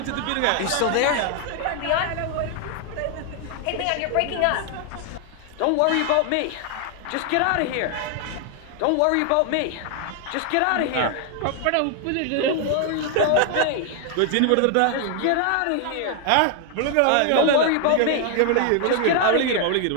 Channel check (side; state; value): both; different; correlation 0.00